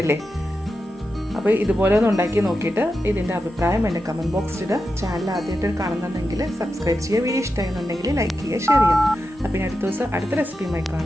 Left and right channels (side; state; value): both; normal; correlation 0.89